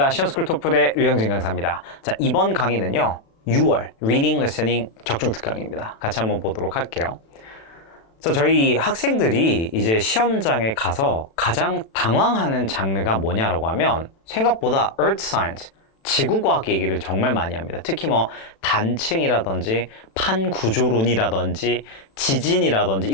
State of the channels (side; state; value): right; late; 36 ms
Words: 시험스쿨 토플의 류영진 강사입니다. 자, 이번 강의는요, 6월 Reading, Listening 적중 특강입니다. 같이 한번 보도록 할게요. 자, 저희 학생들이 이제 시험장에 가서 가장 당황하는 장르가 뭐냐라고 하면 생각보다 Earth Science, 지구과학 얘기를 정말 많이 합니다. 특히 뭐 단층이라든지 판구조론이라든지 지진이라든지